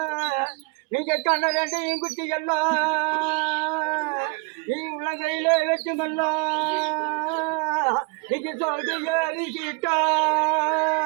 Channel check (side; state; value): left; quieter; 32.0 dB